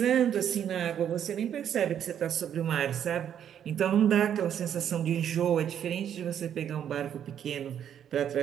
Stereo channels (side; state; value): left; quieter; 9.4 dB